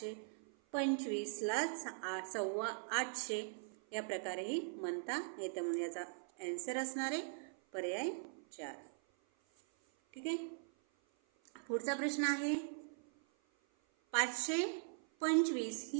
8.25 या प्रकारेही म्हणता येतं. म्हणून याचा आन्सर असणार आहे पर्याय 4. ठीक आहे. पुढचा प्रश्न आहे 525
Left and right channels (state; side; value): silent; left; 51 dB below the other